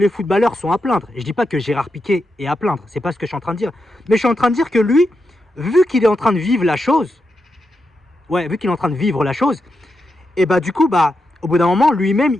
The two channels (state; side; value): normal; both; correlation 0.86